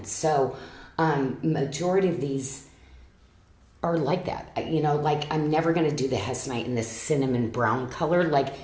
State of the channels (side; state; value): both; identical; correlation 1.00